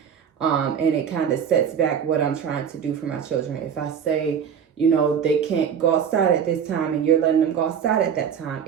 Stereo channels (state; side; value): quieter; left; 7.8 dB